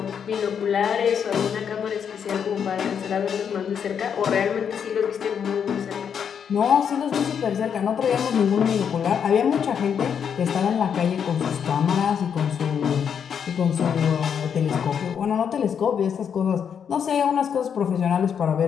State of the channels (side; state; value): right; quieter; 7.6 dB